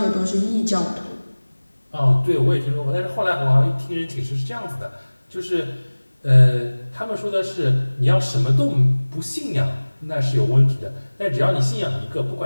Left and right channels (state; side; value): inverted; both; correlation -1.00